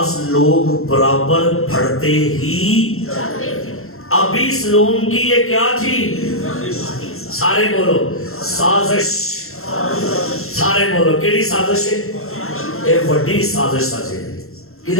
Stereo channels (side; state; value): right; late; 0.62 ms